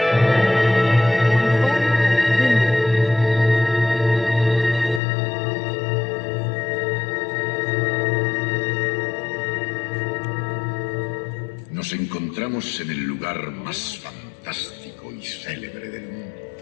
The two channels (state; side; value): drops out; right; at 5.0 s